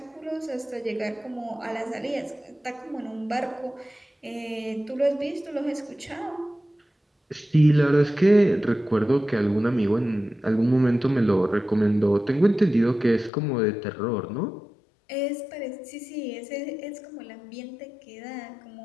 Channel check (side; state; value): right; drops out; at 13.3 s